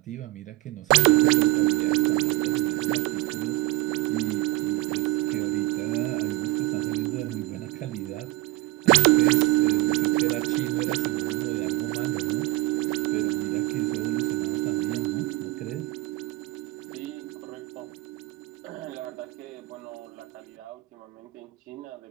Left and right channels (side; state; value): left; quieter; 19.6 dB